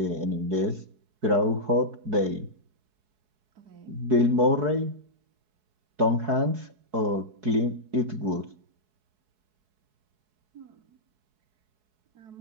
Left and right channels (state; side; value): late; left; 4.7 ms